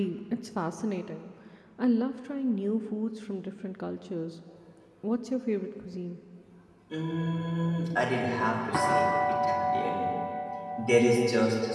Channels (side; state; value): both; identical; correlation 1.00